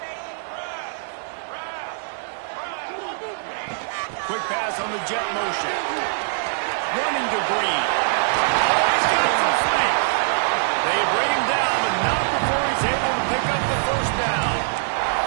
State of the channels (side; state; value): left; silent; 63 dB below the other